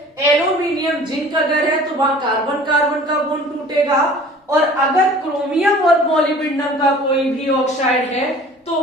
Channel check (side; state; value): both; normal; correlation 0.46